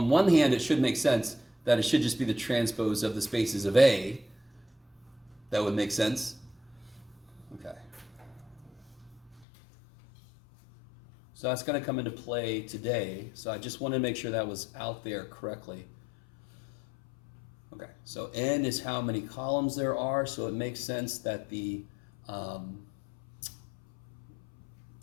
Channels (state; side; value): drops out; right; at 9.5 s